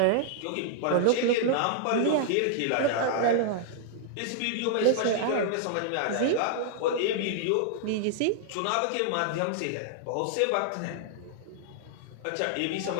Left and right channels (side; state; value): both; different; correlation -0.01